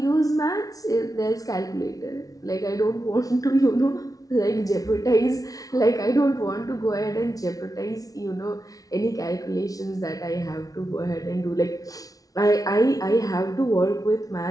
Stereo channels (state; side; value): late; right; 0.18 ms